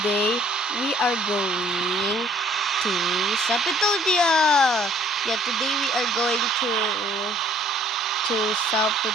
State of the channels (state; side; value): normal; both; correlation 0.59